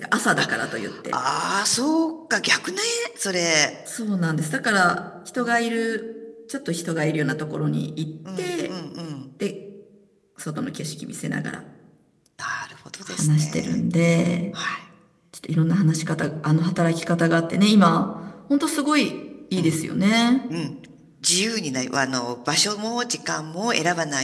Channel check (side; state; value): both; identical; correlation 1.00